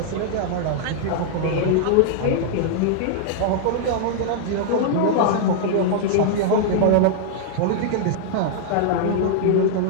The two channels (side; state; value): both; different; correlation -0.01